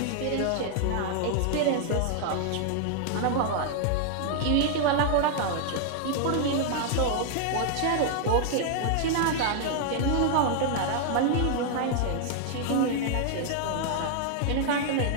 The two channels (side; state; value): both; different; correlation 0.00